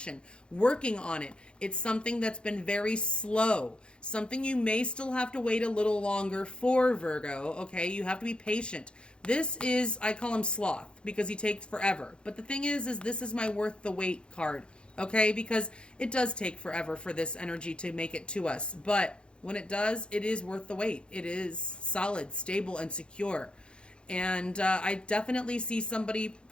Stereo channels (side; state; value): right; late; 0.055 ms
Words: working on it. It's something that's been very slow, something you may still have to wait a little longer for, Virgo, okay? You have to be patient. This is, I call him sloth, because he takes forever. But the thing is this is my worth the wait card, okay? Because it does take forever for this energy to make it to us, but when it does, it is worth the wait. It is solid, stable, and secure. And I definitely see somebody